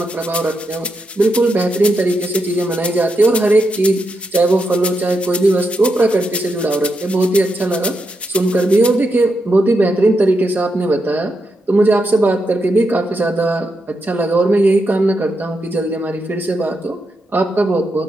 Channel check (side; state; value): both; normal; correlation 0.84